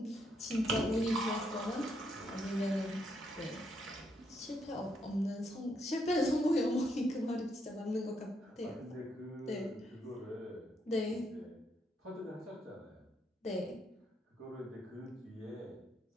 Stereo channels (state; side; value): normal; both; correlation 0.76